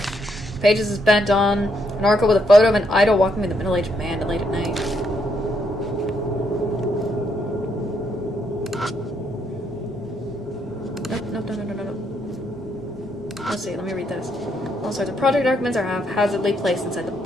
Pages is bent on an article with a photo of an idol walking with a middle-aged man late at night. Nope. Let's see, let me read this. All sorts of project documents are haphazardly placed inside the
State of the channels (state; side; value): normal; both; correlation 0.75